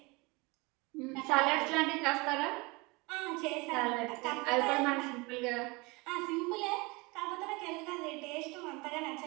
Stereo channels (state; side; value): quieter; left; 25.9 dB